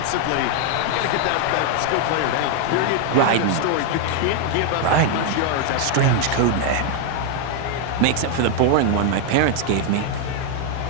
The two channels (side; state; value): both; different; correlation 0.00